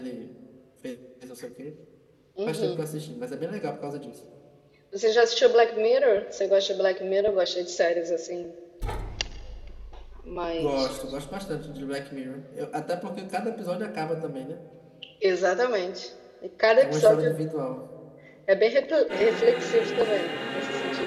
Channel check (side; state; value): both; identical; correlation 1.00